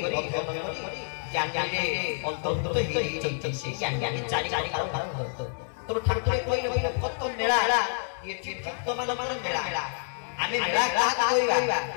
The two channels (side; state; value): right; silent; 59 dB below the other